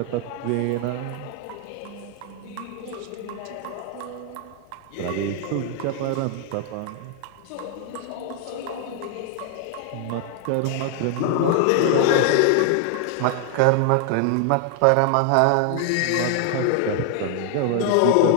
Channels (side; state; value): both; different; correlation 0.00